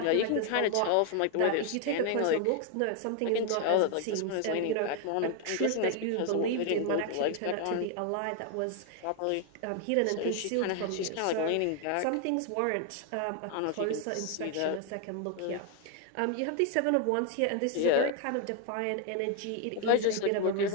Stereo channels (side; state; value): both; different; correlation 0.01